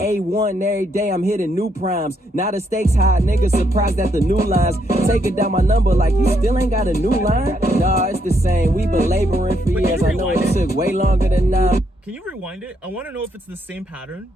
every day, I'm hitting new primes. Now the stakes high, niggas surprised at the new lines. Taking down my number like you still ain't got a new line? Nah, it's the same, we been laboring for years. I know it took way longer than 9. Can you rewind it? I want to know if it's the same pattern,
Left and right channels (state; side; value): normal; both; correlation 0.75